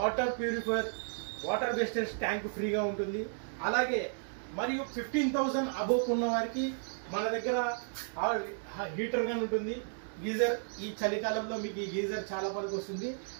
purifier, water wastage tank ఫ్రీగా ఉంటుంది. అలాగే మరియు 15,000 అబోవ్ ఉన్న వారికి మన దగ్గర హీటర్ గాని ఉంటుంది. గీజర్, ఈ చలికాలంలో మీకు ఈ గీజర్ చాలా పనికి వస్తుంది.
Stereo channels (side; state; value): left; silent; digital silence